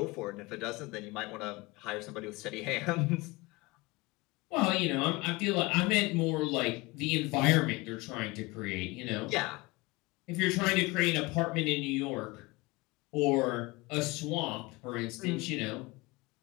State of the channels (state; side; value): quieter; right; 23.4 dB